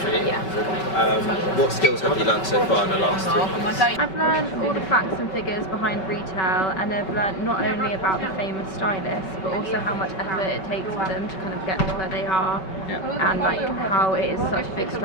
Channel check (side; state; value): right; late; 5.3 ms